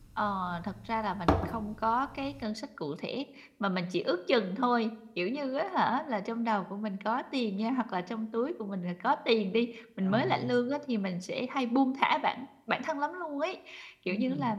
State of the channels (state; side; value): identical; both; correlation 1.00